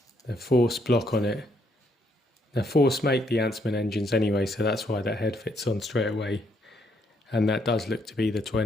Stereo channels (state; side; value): normal; both; correlation 0.72